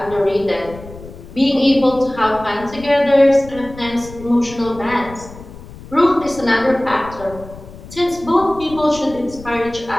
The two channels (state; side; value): noise; left; rumble, 16 dB below the sound